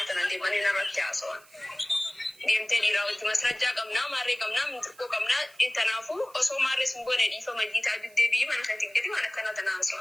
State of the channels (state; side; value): noise; right; hiss, 25 dB below the sound